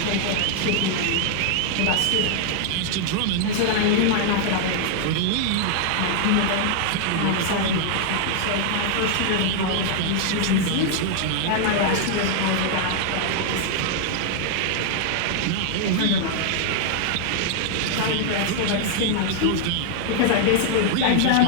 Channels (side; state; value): both; different; correlation 0.00